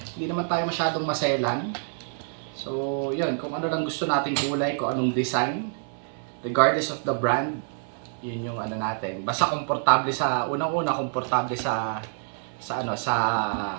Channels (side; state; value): left; silent; 60 dB below the other